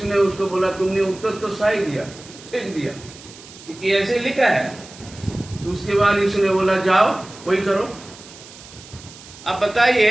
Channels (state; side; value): noise; right; hiss, 19 dB below the sound